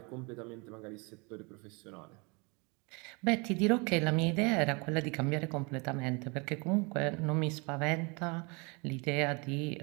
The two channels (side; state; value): left; quieter; 29.8 dB